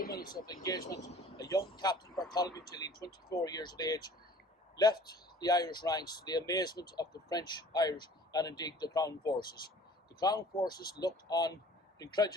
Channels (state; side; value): normal; both; correlation 0.49